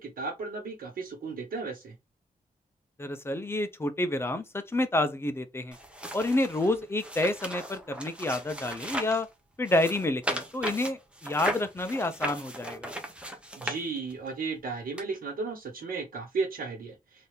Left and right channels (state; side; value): normal; both; correlation 0.64